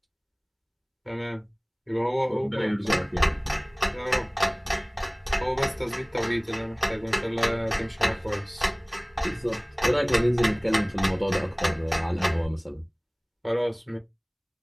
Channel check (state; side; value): identical; both; correlation 1.00